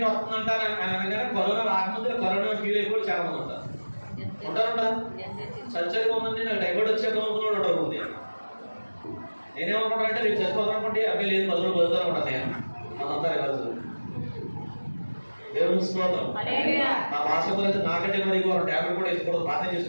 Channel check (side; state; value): both; inverted; correlation -1.00